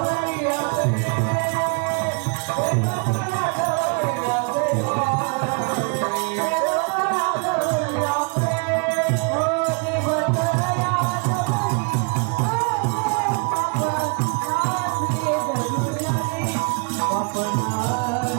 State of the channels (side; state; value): left; quieter; 34.6 dB